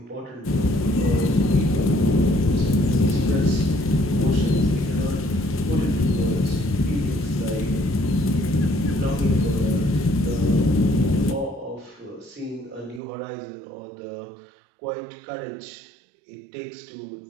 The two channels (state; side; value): drops out; left; at 13.0 s